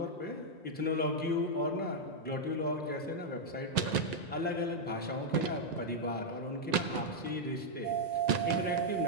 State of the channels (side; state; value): right; late; 1.9 ms